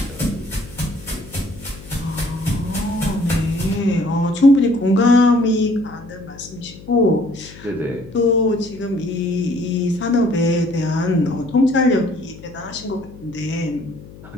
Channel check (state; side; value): noise; left; hum, 18 dB below the sound